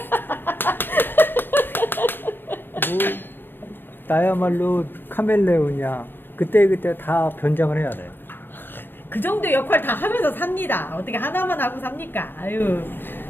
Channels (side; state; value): right; late; 0.097 ms